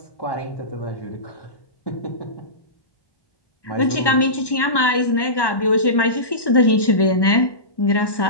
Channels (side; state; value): right; late; 1.1 ms